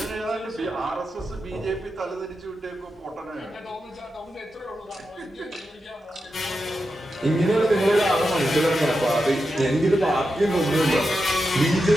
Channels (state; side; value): normal; both; correlation 0.89